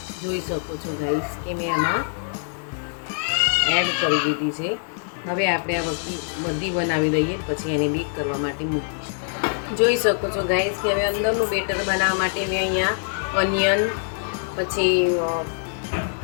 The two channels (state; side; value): silent; right; digital silence